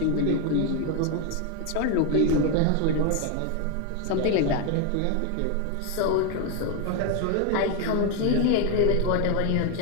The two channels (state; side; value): different; both; correlation 0.01